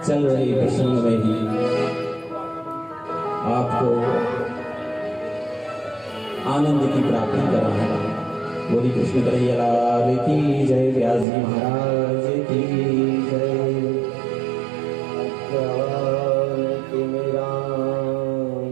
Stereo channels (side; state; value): left; drops out; at 11.2 s